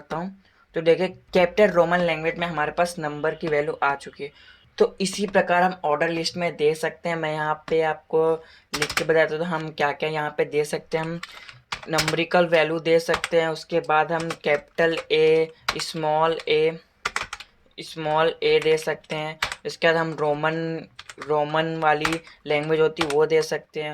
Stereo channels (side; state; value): both; identical; correlation 1.00